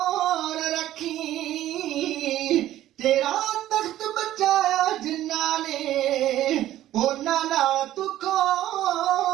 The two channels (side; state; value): left; quieter; 13.5 dB